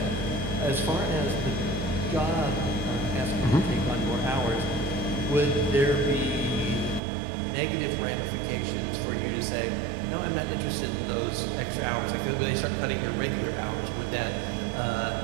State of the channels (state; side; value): drops out; left; at 7.0 s